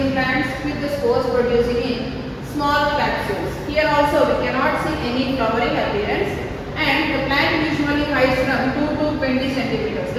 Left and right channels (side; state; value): both; identical; correlation 1.00